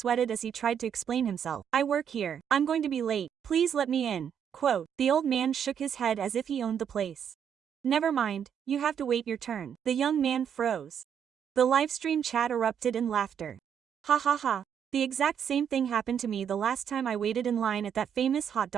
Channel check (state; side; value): quieter; left; 8.3 dB